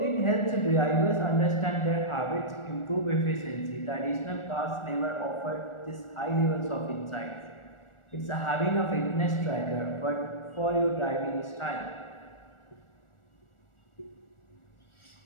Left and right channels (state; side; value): late; right; 1.4 ms